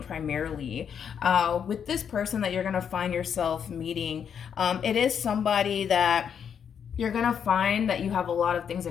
primarily. With this person that you're going to find yourself meeting, it is somebody that you're going to find that you have a lot of things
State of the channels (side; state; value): right; quieter; 7.7 dB